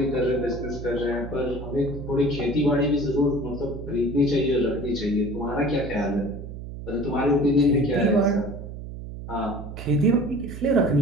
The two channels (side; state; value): right; noise; hum, 10 dB below the sound